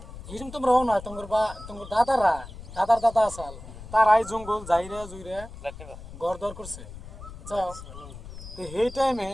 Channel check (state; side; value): noise; left; rumble, 14 dB below the sound